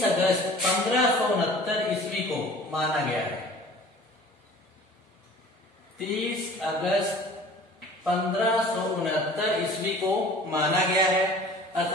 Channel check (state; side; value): normal; both; correlation 0.45